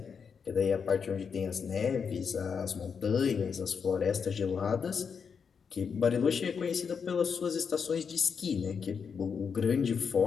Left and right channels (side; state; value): right; quieter; 6.3 dB